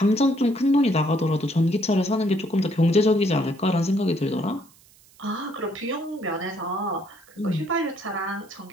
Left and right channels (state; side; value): noise; right; hiss, 28 dB below the sound